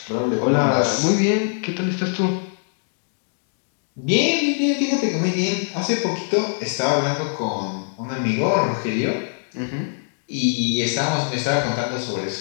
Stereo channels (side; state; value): right; silent; digital silence